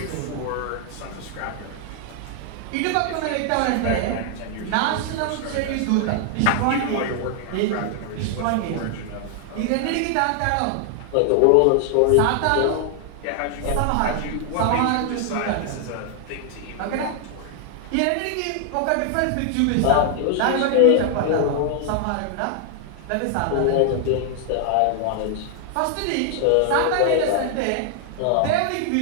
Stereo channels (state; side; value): different; both; correlation 0.00